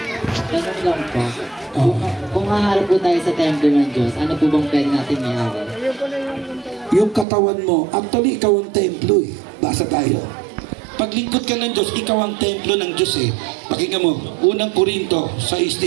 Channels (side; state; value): left; drops out; at 7.2 s